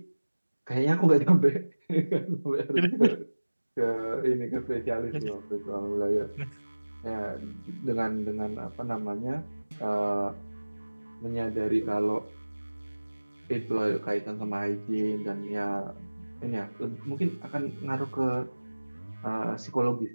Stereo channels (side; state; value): both; inverted; correlation -1.00